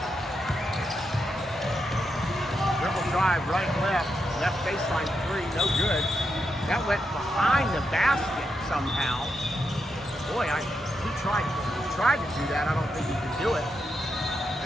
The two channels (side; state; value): both; normal; correlation 0.84